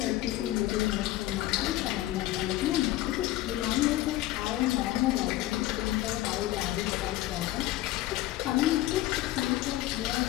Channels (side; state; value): right; quieter; 15.9 dB